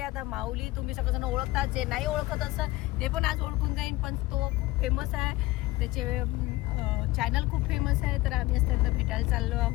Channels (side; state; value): right; quieter; 19.0 dB